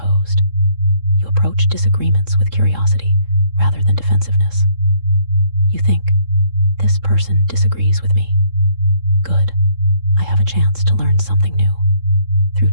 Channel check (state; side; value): late; left; 3.7 ms